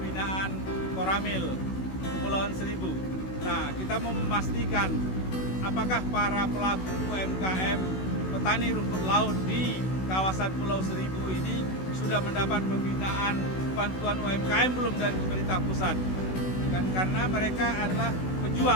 Koramil Kepulauan Seribu. Nah, kita mau memastikan apakah para pelaku UMKM petani rumput laut di kawasan Pulau Seribu ini sudah mendapat pembinaan bantuan UMKM belum dari pemerintah pusat. Karena mereka adalah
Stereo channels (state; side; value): late; right; 16 ms